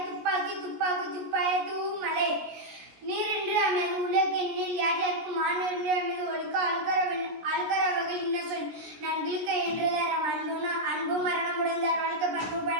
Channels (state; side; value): late; left; 17 ms